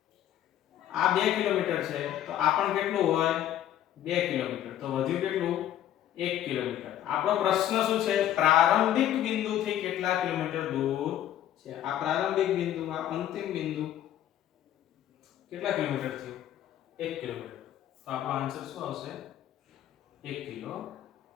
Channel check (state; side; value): quieter; right; 11.7 dB